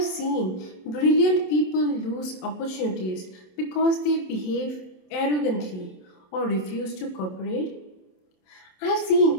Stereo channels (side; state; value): right; late; 27 ms